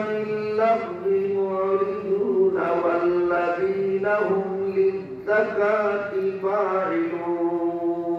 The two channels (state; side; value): identical; both; correlation 1.00